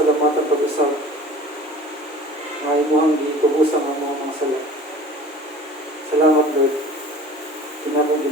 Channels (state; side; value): normal; both; correlation 0.44